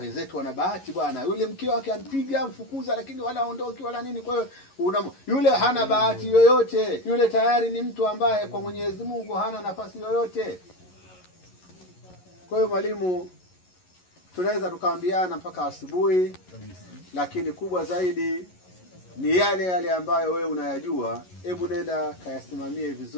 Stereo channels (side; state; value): right; late; 11 ms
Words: wenzetu wana bahati bwana, yule mke wake anpiga mfukuza, lakini wala aondoki wala nini. Kwa hiyo yule hana bahati yoyote, yule tayari ni mtu ambaye kwa Mwenyezi Mungu hana nafasi yoyote. Kwa hiyo mwalimu, tunaweza tukaambiana mpaka asubuhi, lakini kubwa zaidi ni yale ambayo wewe unayajua, hebu nenda kayasimamie